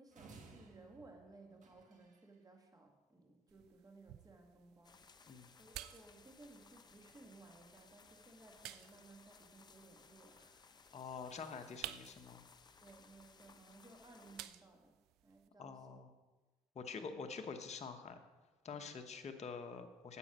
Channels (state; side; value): normal; both; correlation 0.40